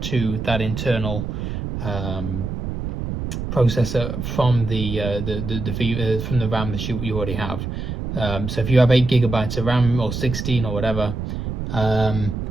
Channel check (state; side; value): noise; right; rumble, 4 dB below the sound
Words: that internal processor from from the RAM that you already have. So if you have 8 gigabytes of RAM or 16 or whatever,